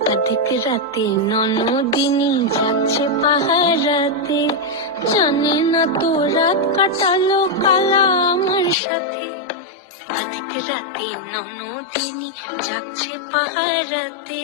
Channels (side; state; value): right; drops out; at 8.8 s